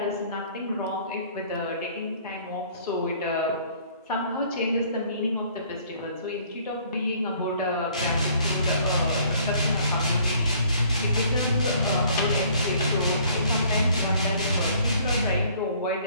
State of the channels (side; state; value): both; inverted; correlation -0.58